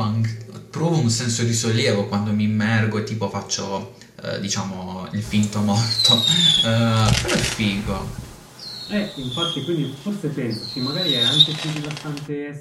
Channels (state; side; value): identical; both; correlation 1.00